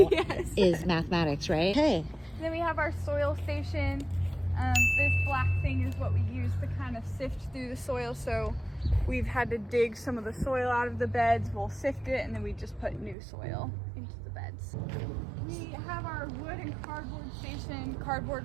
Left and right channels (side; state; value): left; drops out; at 13.2 s